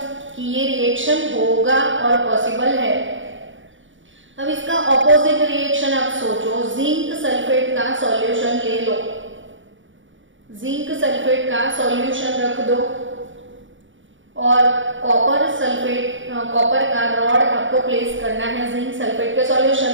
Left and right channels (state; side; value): late; left; 0.56 ms